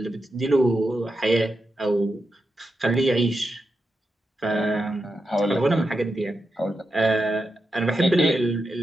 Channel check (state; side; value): normal; both; correlation 0.87